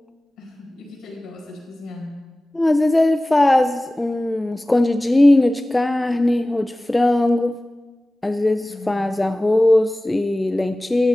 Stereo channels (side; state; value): both; normal; correlation 0.98